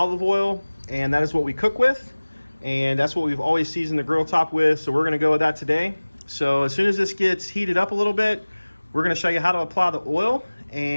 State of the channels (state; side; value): inverted; both; correlation -1.00